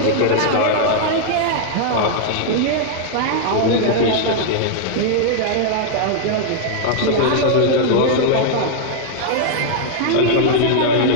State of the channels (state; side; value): different; both; correlation -0.01